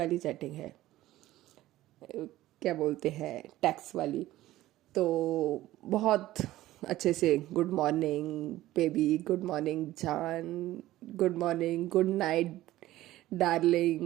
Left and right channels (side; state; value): left; quieter; 15.6 dB